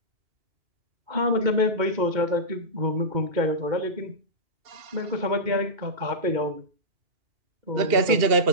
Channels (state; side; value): late; left; 2.7 ms